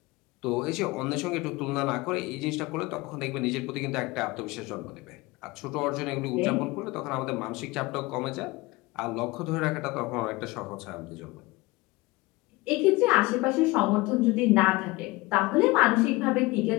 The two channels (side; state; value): right; quieter; 22.1 dB